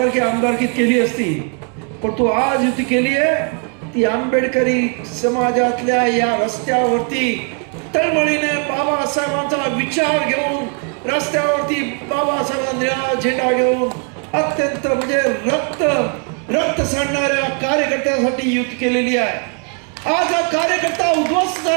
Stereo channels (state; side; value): quieter; left; 39.1 dB